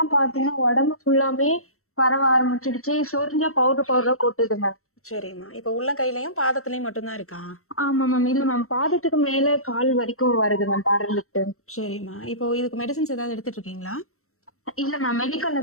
பாத்தீங்கன்னா உடம்பு ஃபுல்லாமே பரவ ஆரம்பிச்சிடுச்சு. சொரிஞ்சா பவுடர் பவுடரா கொட்டுது மேம். சரிம்மா. இப்போ உள்ளங்கையிலயும் பாதத்துலயும் மட்டும்தான் இருக்கா? ஆமா மேம். இல்ல மேம், பாதத்துக்கு மேல கால் வரைக்கும் வருது மேம் படர்ந்துட்டு. சரிம்மா. இப்போ இதுக்கு மெடிசின்ஸ் ஏதாவது எடுத்துட்டு இருக்கீங்களா? இல்ல மேம், மெடிக்கல்ல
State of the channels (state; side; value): late; right; 0.63 ms